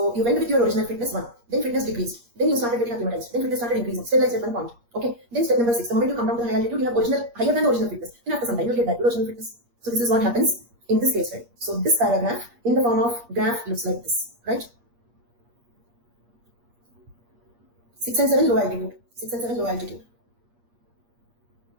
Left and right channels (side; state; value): left; late; 8.5 ms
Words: you went with your original fitness 1. Then fitness decreased. Then you started getting acclimatized. Then fitness started increasing. Stabilized at 1 point. Okay. Then step number 6. The moment you come down to the high altitude, you have higher than original fitness. Then after some time, you'll get back to original fitness. So this is what happens in this case, right? So this paragraph in the form of graph looks like this, right? 6 and 7 low altitude. 6 and 7 low altitude.